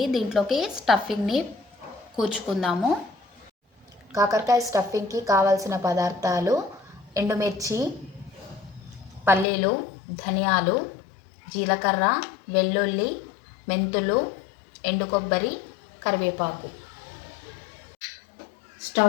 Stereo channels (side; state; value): right; drops out; at 9.5 s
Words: దీంట్లోకి స్టఫింగ్ని కూర్చుకుందాము. కాకరకాయ స్టఫింగ్కి కావాల్సిన పదార్థాలు: ఎండుమిర్చి, పల్లీలు, ధనియాలు, జీలకర్ర, వెల్లుల్లి, మెంతులు, ఎండు కొబ్బరి, కరివేపాకు.